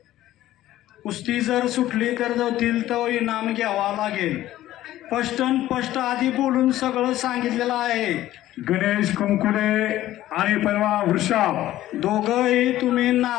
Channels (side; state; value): right; quieter; 14.3 dB